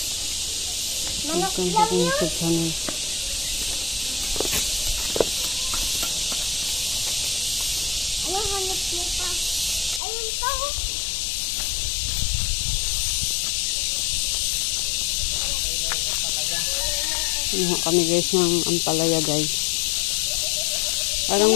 Manok Welcome lang to yun? YouTube channel. Anong hanap mo pa? Ayun pa oh. Iha kami guys ng ampalaya guys.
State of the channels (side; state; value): right; drops out; at 10.0 s